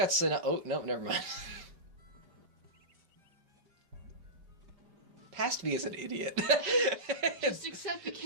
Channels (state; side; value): late; left; 5.2 ms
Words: an... Oh, no, never mind. Past me is an idiot. Just accept you